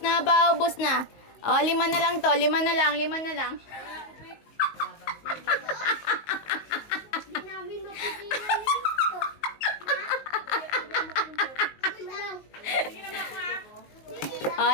na, paubos na. Oh, 5 na lang to. 5 na lang, 5 na lang. Hindi namin mapigilan ito.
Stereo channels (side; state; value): right; late; 19 ms